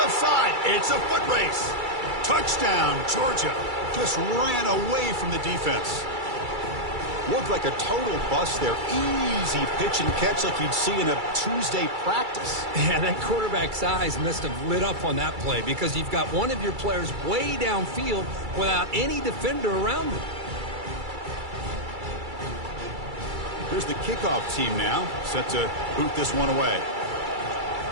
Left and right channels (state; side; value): late; left; 2.3 ms